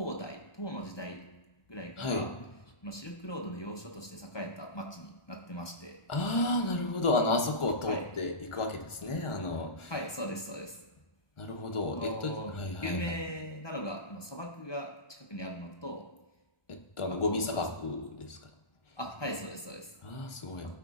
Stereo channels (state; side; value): late; right; 1.2 ms